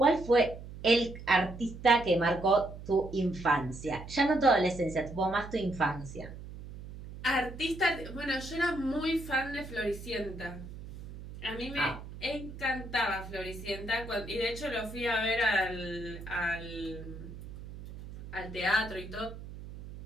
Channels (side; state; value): right; noise; hum, 13 dB below the sound